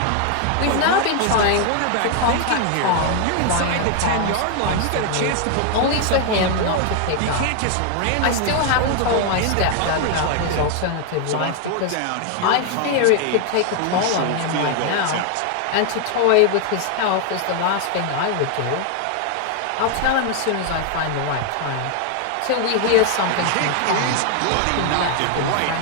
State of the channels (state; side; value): different; both; correlation 0.00